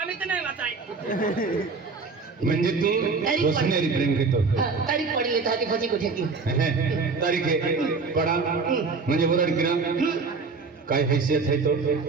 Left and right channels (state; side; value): quieter; left; 4.5 dB